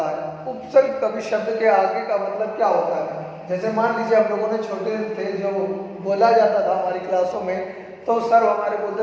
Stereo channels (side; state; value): both; identical; correlation 1.00